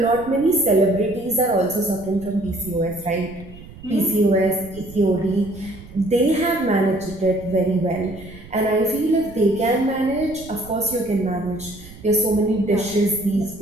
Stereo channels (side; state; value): right; noise; rumble, 18 dB below the sound